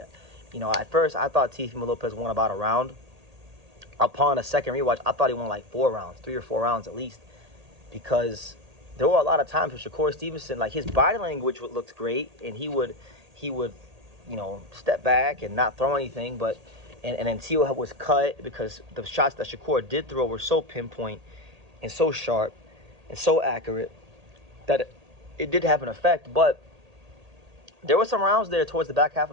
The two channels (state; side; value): late; left; 1.8 ms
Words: You know, at first I thought Teofimo Lopez won about a round. Upon a second rewatch, I thought he won like 4 rounds, 3 or 4 rounds at least, because there were a lot of times where Shakur Stevenson, like, his body language looked great, and he would, you know, step back and not throw anything, but and then Teo was cut because the shots that Shakur did throw were so pinpoint and so sharp and so accurate that it did have an effect. But there were some rounds there towards the back half